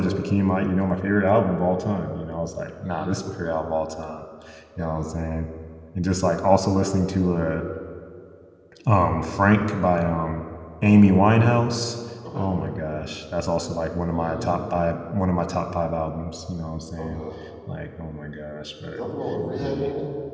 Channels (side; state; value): both; identical; correlation 1.00